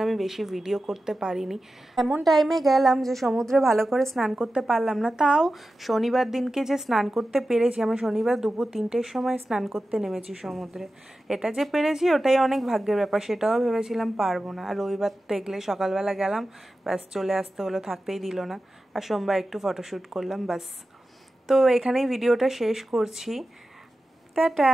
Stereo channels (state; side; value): normal; both; correlation 0.93